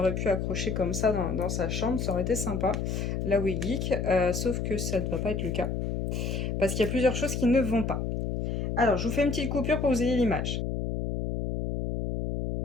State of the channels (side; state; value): left; noise; hum, 2 dB below the sound